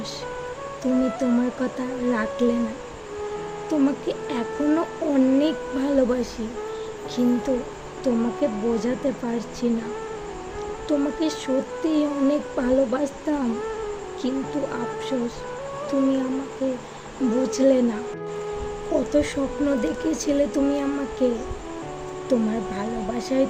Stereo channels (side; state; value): both; identical; correlation 1.00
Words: তুমি তোমার কথা রাখলে না। তোমাকে এখনো অনেক ভালোবাসি, কিন্তু তোমাকে বোঝাতে পারছি না। তোমাকে সত্যিই অনেক ভালোবাসতাম, কিন্তু আফসোস তুমি আমাকে বুঝলে না। কত স্বপ্ন দেখেছিলে তুমি আমাকে। তোমার ভালোবাসাই